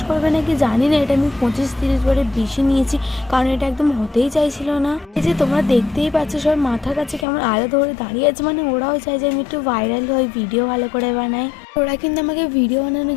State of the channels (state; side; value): drops out; right; at 7.2 s